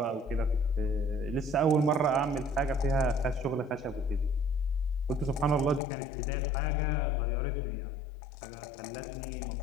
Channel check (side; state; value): right; drops out; at 5.8 s